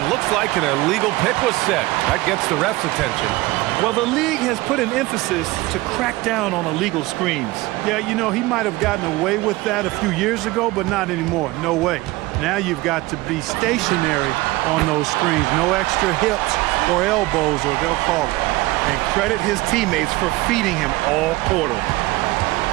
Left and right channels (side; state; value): left; quieter; 20.0 dB